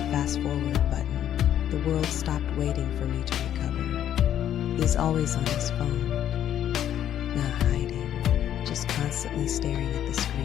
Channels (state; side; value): quieter; right; 10.7 dB